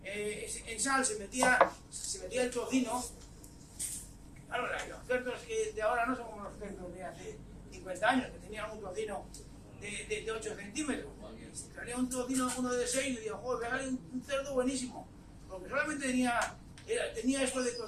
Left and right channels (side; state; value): both; identical; correlation 1.00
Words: en sal se metía el tocino. Claro, los cerdos que de ahora no son como los cerdos de hace 50 años, que tenían un tocino de 8 centímetros. Salía un tocino, uno de 6, y digo, joder, pegale un cerdo buenísimo. Porque solamente tenía esto de